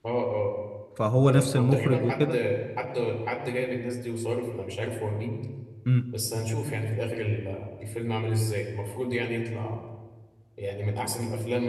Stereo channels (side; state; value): both; identical; correlation 1.00